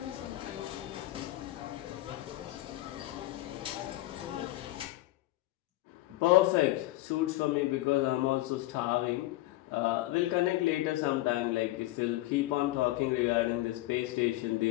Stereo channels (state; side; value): quieter; right; 17.4 dB